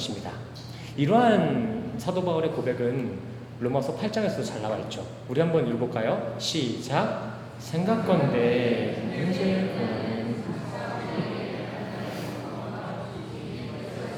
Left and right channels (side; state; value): both; identical; correlation 1.00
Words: 이러한 사도 바울의 고백은 로마서 8장에서도 잘 나와 있죠. 우리 한번 읽어볼까요? 시작. 생각건대 현재